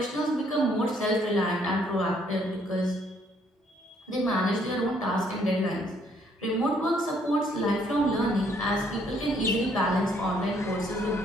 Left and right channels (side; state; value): both; normal; correlation 0.67